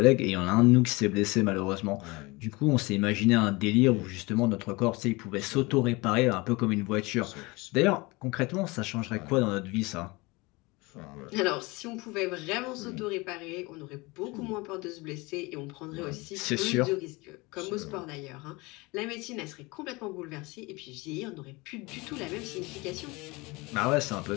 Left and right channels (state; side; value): quieter; right; 24.4 dB